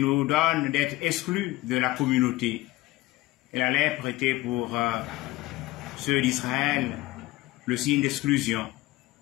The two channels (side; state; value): right; quieter; 18.5 dB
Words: donnent d'être exclus de la communauté. Et la lèpre était pour ceux d'Israël le signe d'exclusion,